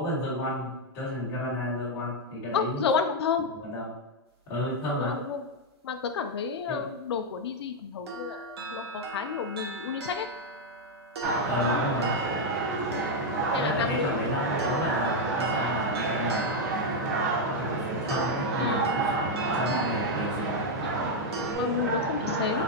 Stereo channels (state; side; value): normal; both; correlation 0.01